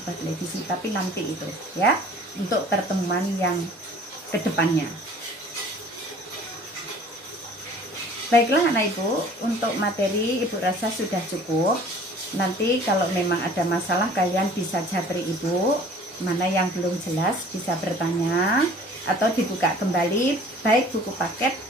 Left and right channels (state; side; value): normal; both; correlation 0.49